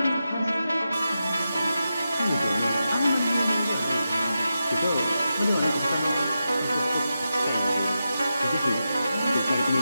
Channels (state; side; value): inverted; both; correlation -0.90